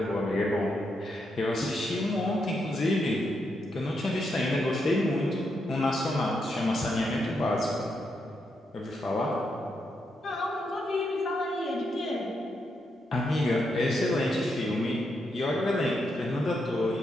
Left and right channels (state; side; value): normal; both; correlation 0.81